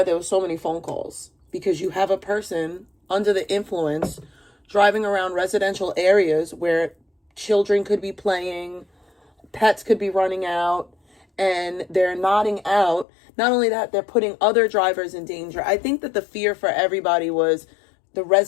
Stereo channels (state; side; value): drops out; right; at 13.1 s